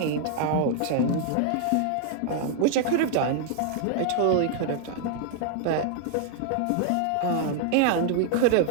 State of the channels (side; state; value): both; different; correlation 0.00